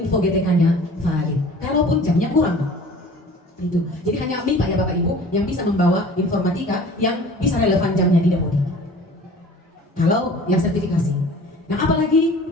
GTK-nya valid. Kalaupun jamnya kurang, itu. Jadi hanya MIPA ya Bapak Ibu yang bisa membawa informatika yang bisa relevan jamnya di dapodik. Kalau yang sertifikasi. Nah, apalagi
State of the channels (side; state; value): both; normal; correlation 0.45